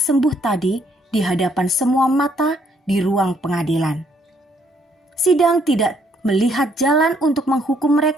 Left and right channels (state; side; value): normal; both; correlation 0.68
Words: tadi di hadapan semua mata di ruang pengadilan. Sidang tidak melihat jalan untuk menghukum